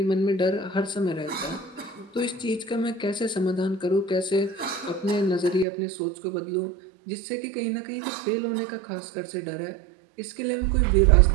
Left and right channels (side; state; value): left; drops out; at 5.7 s